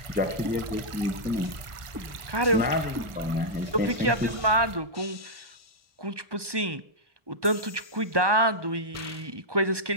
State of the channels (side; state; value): left; late; 1.2 ms